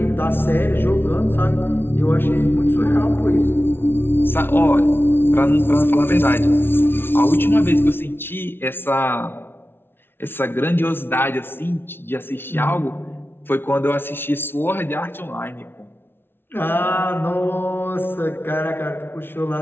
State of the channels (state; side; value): late; right; 0.11 ms